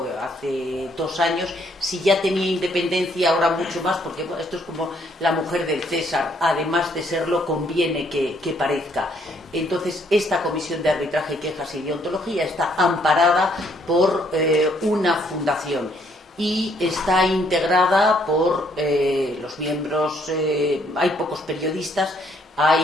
hace 2 años. Si ya tenía independencia, ahora mucho más, porque bueno, esto es como la mujer del César, además de serlo, conviene que parezca. Entonces, esta comisión de arbitraje, quejas y deontología está amparada por una fundación y está integrada por los miembros, hay pocos periodistas,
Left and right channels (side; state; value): both; normal; correlation 0.68